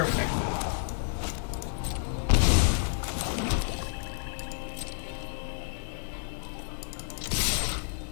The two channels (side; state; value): right; silent; digital silence